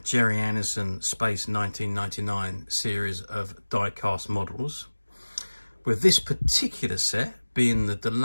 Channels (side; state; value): both; inverted; correlation -1.00